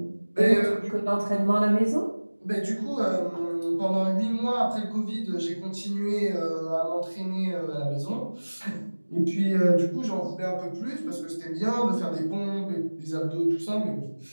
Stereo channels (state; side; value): inverted; both; correlation -1.00